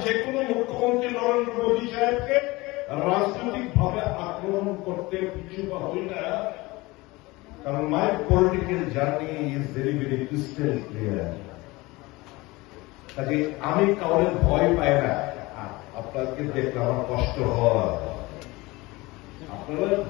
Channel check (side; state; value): right; quieter; 22.0 dB